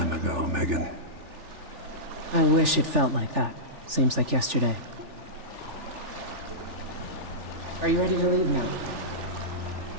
ago, Megan. I wish it felt like that. Seems like yesterday. Are you ready to leave now?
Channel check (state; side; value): late; left; 3.4 ms